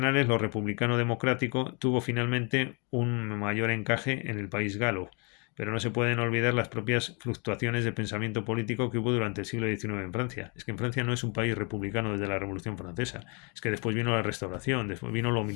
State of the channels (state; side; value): quieter; right; 33.9 dB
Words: lo republicano-democrático tuvo finalmente un mayor encaje en el país galo, pero no se pueden olvidar las propias fluctuaciones de pensamiento político que hubo durante el siglo XIX en Francia. Es que en Francia no es un país republicano desde la Revolución Francesa, es que después vino la Restauración, después vino lo